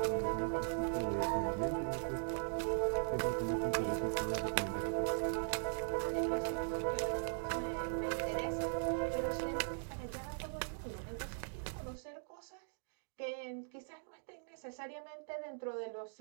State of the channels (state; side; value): silent; left; digital silence